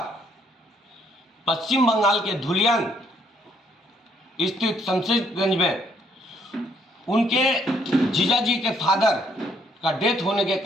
पश्चिम बंगाल के धुलियान स्थित शमशेरगंज में उनके जीजाजी के फादर का डेथ होने के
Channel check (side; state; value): both; normal; correlation 0.68